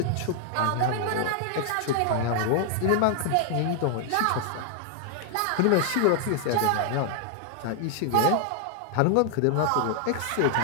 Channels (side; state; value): both; different; correlation 0.00